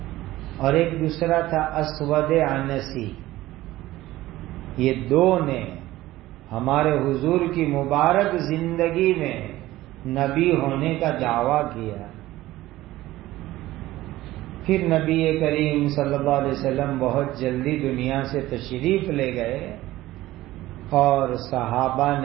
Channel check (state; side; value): quieter; left; 16.5 dB